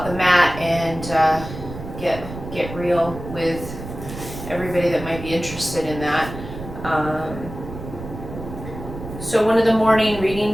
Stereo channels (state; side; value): noise; right; rumble, 11 dB below the sound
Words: the mat and get real with everybody that might be interested in that. So one of the morning